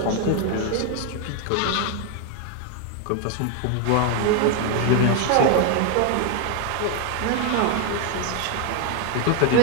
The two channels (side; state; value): both; different; correlation 0.01